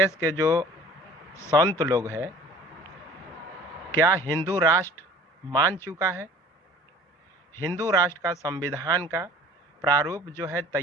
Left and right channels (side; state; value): both; normal; correlation 0.48